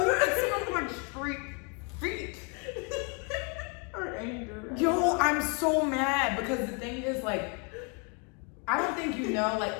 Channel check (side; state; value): right; quieter; 35.0 dB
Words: it smelled like straight feet. Or anger. Yo, I'm so mad because the thing is like, I don't think you know,